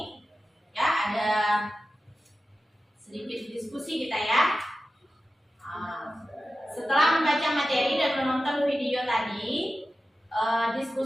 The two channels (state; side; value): normal; both; correlation 0.93